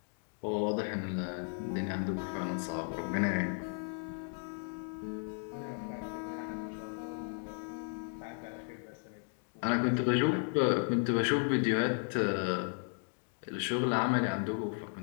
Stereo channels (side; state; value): right; silent; 55 dB below the other